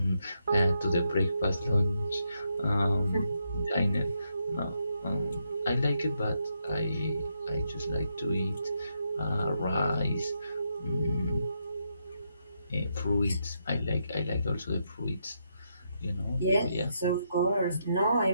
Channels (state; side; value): inverted; both; correlation -0.80